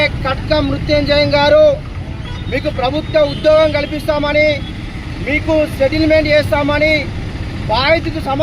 కట్క మృత్యుంజయం గారు మీకు ప్రభుత్వ ఉద్యోగం కల్పిస్తామని, మీకు సెటిల్మెంట్ చేస్తామని, బాధితుకు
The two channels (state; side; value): identical; both; correlation 1.00